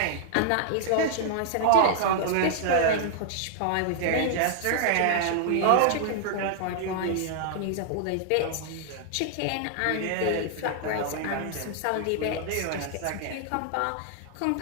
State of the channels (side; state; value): both; different; correlation -0.01